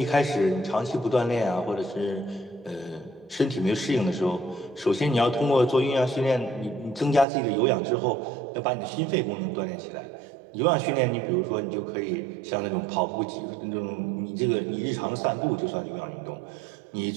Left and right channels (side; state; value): left; drops out; at 7.2 s